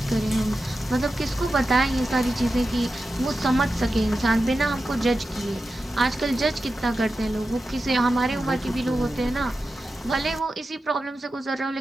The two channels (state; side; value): normal; both; correlation 0.92